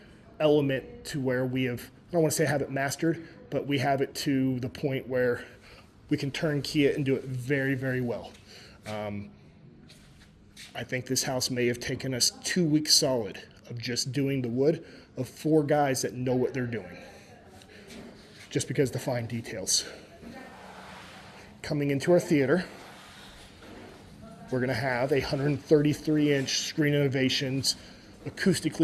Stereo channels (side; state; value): both; identical; correlation 1.00